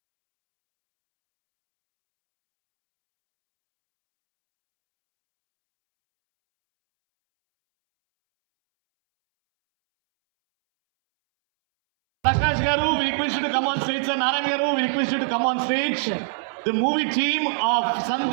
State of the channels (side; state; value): left; silent; 64 dB below the other